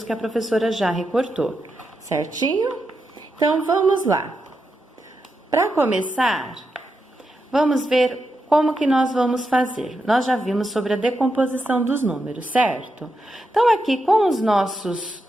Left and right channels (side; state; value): both; normal; correlation 0.86